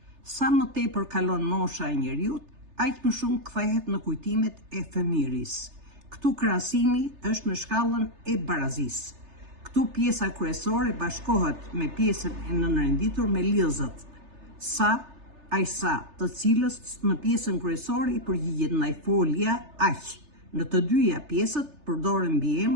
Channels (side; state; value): left; late; 3.3 ms